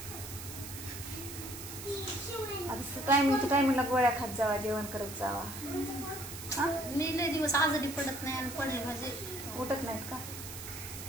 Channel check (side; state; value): right; noise; hiss, 10 dB below the sound